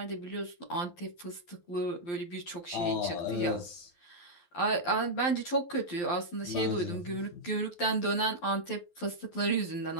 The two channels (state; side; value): late; right; 12 ms